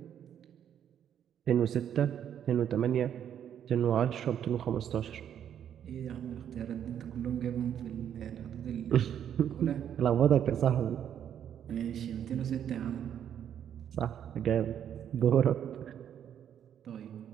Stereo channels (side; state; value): left; quieter; 9.5 dB